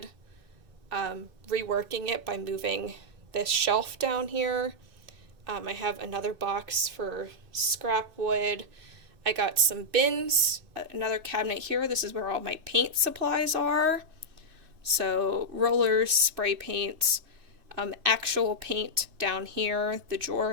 reworking it by moving this shelf down here. I have another box for scrap wood. I got some bins, another cabinet here. This is where all my paint supplies are. So rollers, spray paint, actual paint down here. The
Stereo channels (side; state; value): left; late; 2.6 ms